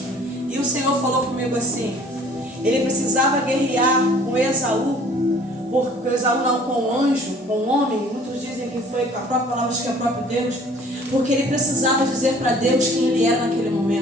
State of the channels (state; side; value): normal; both; correlation 0.53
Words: E o Senhor falou comigo assim, ele precisava guerrear com Esaú, porque Esaú não com o anjo, com o homem. Muitos dizem que foi a própria palavra, acho que é o próprio Deus, porque ele precisava dizer para Deus quem ele era naquele